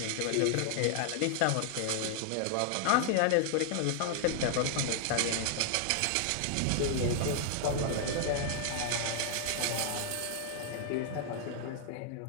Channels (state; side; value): different; both; correlation 0.00